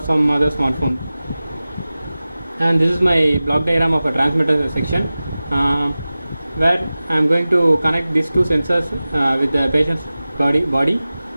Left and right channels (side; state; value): both; inverted; correlation -0.97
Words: other smartphone. And this is my block diagram of a transmitter section, where I am going to connect these two sensors with the patient's body,